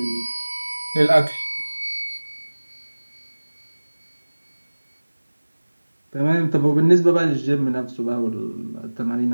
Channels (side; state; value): both; inverted; correlation -1.00